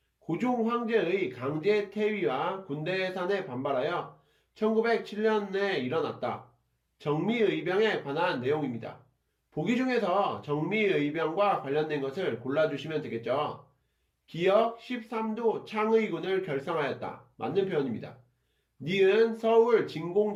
고종 황제의 강제 퇴위와 군대 해산에 반발하여 1907년에 일어났다. 정미의병에 관한 내용입니다. 보기 중에서 정미의병과 관련된 것을 골라주시면 되겠죠. 기역 13도 창의군을 결성하였다. 맞는 표현입니다. 니은 서울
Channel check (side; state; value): both; identical; correlation 1.00